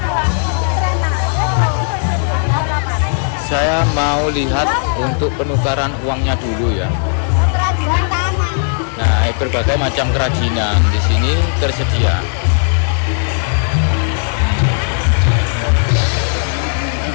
Saya mau lihat untuk penukaran uangnya dulu ya. Nah, berbagai macam kerajinan di sini tersedia.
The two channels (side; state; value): right; silent; 69 dB below the other